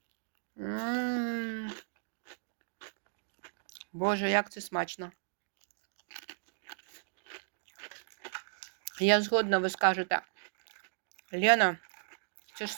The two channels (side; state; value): left; silent; digital silence